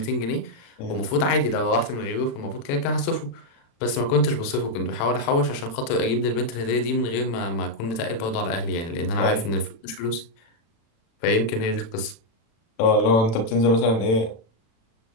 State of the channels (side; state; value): right; late; 36 ms